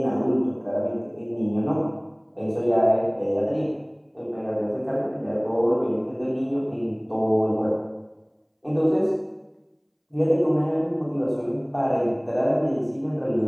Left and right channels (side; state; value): both; identical; correlation 1.00